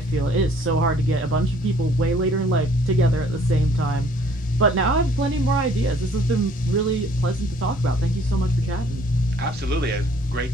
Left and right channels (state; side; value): normal; both; correlation 0.58